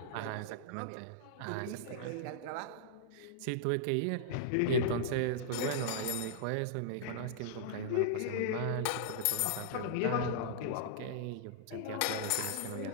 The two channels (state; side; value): different; both; correlation -0.02